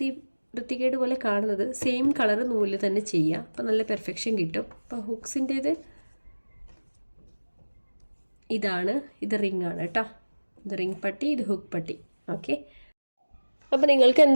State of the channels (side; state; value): both; inverted; correlation -1.00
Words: വൃത്തികേട് പോലെ കാണുന്നത്. സെയിം കളർ നൂലിൽ തന്നെ ചെയ്യുക, അപ്പോൾ നല്ല പെർഫെക്ഷൻ കിട്ടും. അപ്പോൾ ഹുക്സിൻ്റേത് ഇതാണ്, ഇത് റിംഗ് ആണ് കേട്ടോ. ഇത് റിംഗ് പട്ടി, ഇത് ഹുക്ക് പട്ടി. ഓക്കെ, അപ്പോൾ നിങ്ങൾക്ക്